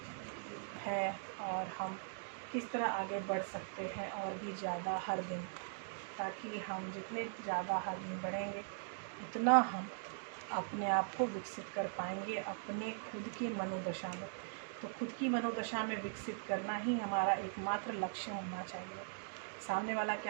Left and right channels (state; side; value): silent; left; digital silence